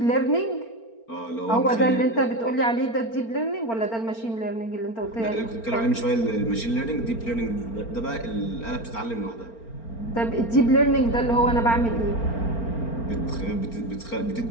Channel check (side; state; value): right; late; 4.4 ms